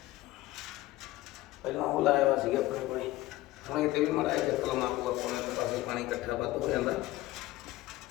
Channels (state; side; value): quieter; right; 17.4 dB